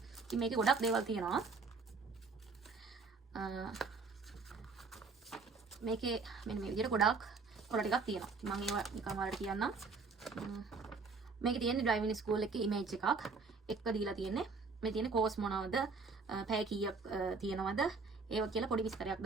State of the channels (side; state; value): left; quieter; 4.4 dB